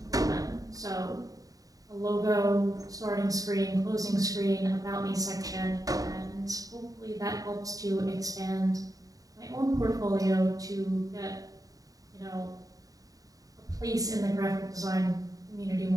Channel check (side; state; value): left; late; 0.17 ms